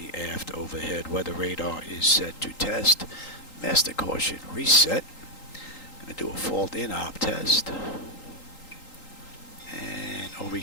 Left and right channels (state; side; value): late; right; 3.8 ms